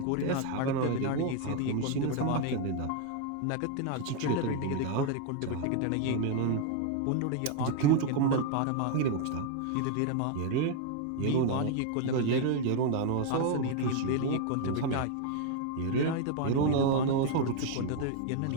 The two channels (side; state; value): both; different; correlation 0.00